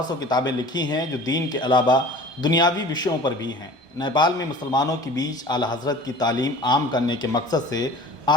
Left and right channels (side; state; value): left; late; 1.2 ms